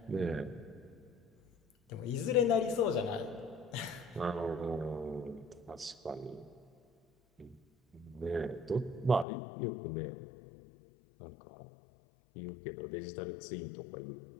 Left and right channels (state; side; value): drops out; right; at 9.2 s